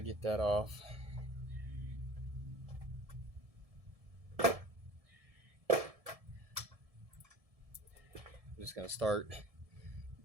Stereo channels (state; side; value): late; left; 1.7 ms